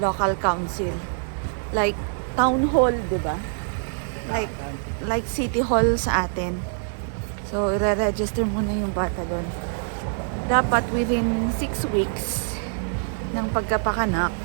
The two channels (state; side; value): silent; left; digital silence